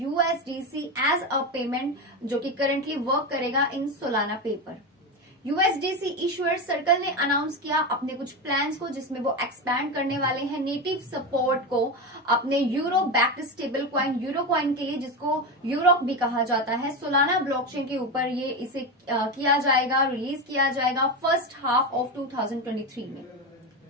USDC as a payment, जो कि करंटली वर्क करेगा in Solana paper. USDC issuer Circle ने अनाउंस किया अपने कुछ प्लान्स को, जिसमें वो एक्सपैंड करने वाले हैं नेटिव सपोर्ट को अपने euro backed stable coin euro coin के लिए, जिसको यूरोक भी कहा जाता है। सोलाना ब्लॉकचेन के ऊपर ये इसे किया जाएगा, रिलीज किया जाएगा फर्स्ट हाफ ऑफ 2023 में।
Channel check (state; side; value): normal; both; correlation 0.17